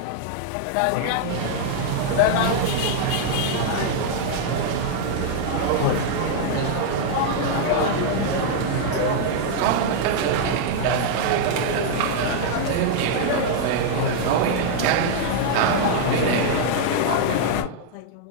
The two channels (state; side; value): different; both; correlation -0.01